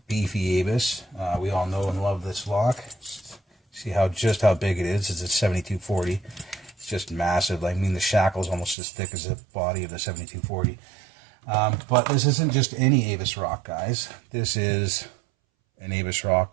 beefy Avis. We all know and love this lock. See just how big it is. It's a 7240. It's just massive. I mean, the shackle's almost as thick as the body of the 7240. But this isn't just any Avis rock, guys. This is an Avis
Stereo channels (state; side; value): drops out; left; at 8.8 s